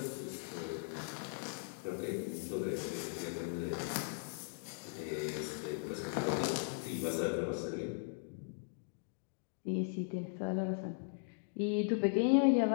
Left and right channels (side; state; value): right; silent; digital silence